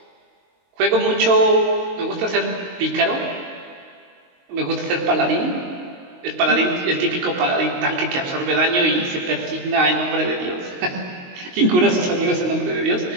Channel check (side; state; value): left; late; 22 ms